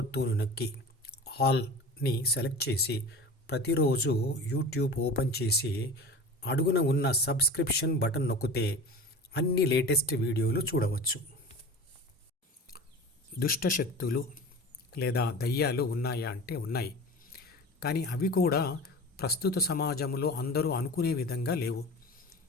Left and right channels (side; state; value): both; normal; correlation 0.35